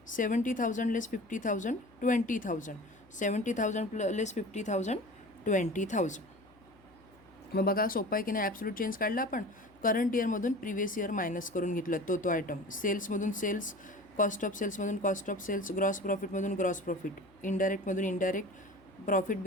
70,000 less 50,000, 20,000. 70,000 less 50,000, 20,000. मग बघा सोपा आहे की नाही. ॲब्सोल्यूट चेंज काढला आपण. करंट इयरमधून प्रिव्हियस इयर मायनस करून घेतलं तो आयटम. सेल्समधून सेल्स, कॉस्ट ऑफ सेल्समधून कॉस्ट ऑफ सेल्स, ग्रॉस प्रॉफिटमधून ग्रॉस प्रॉफिट, इनडायरेक्टमधून इनडायरेक्ट, प्रॉफिट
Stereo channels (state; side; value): noise; left; hum, 29 dB below the sound